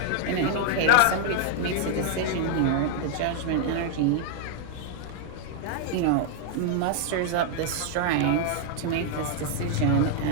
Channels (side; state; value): both; different; correlation 0.00